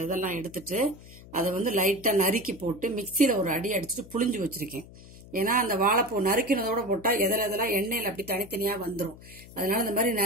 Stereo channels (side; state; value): left; noise; hum, 19 dB below the sound